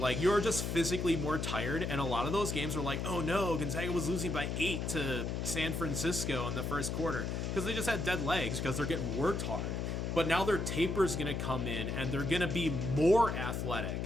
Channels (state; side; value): noise; left; hum, 2 dB below the sound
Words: you're just physically more tired, and a lot of those games were like, oh no, Gonzaga was losing by 8 to San Francisco in the first quarter because they just had dead legs because they're getting worked hard. But now their taper's gonna come in, and they're gonna be more athletic.